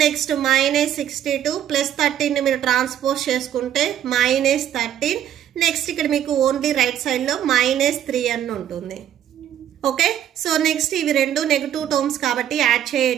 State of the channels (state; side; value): quieter; left; 10.6 dB